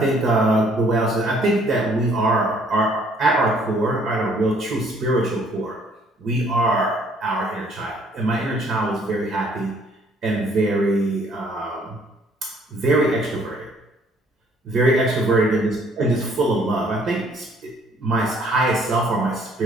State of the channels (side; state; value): both; normal; correlation 0.61